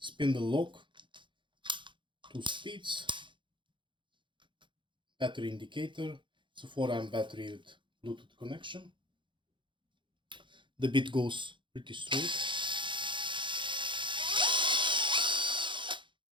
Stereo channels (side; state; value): left; late; 0.23 ms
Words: lock, 2 speeds, battery indicator. It's a 4 amp battery with Bluetooth connection. The bit goes pretty straight.